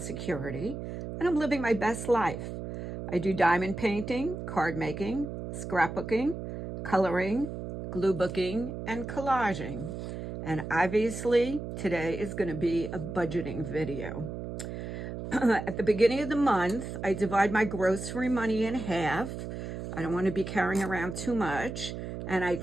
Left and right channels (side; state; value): right; noise; hum, 7 dB below the sound